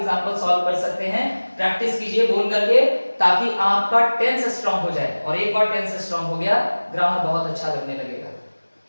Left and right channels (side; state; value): both; inverted; correlation -1.00